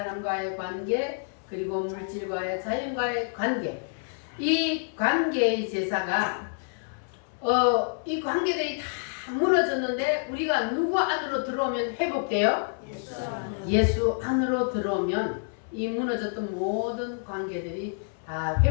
관계, 그리고 물질과의 자연과의 관계. 이 관계의 제사가 이 관계들이 다 무너졌는데 우리가 누구 안으로 들어오면 회복돼요? 예수 안으로 들어오면 이 무너졌던 모든 관계들이 다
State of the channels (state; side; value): silent; right; 59 dB below the other